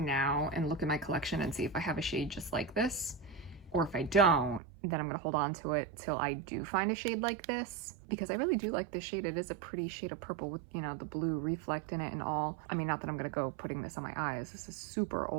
and look at my collection and see if I have a shade just like this. Or if I don't, then I'm gonna hold on to it till I do find a shade like this, because I really do like this shade. It is a pretty shade of purple with, you know, the blue reflect in it and all. I mean, not that I'm gonna go putting this on my eyes. This is super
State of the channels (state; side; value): drops out; left; at 4.6 s